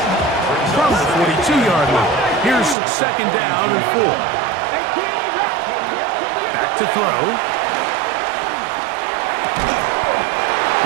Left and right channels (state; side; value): drops out; left; at 2.8 s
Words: From the 42-yard line. Here's second down and 4. Back to throw.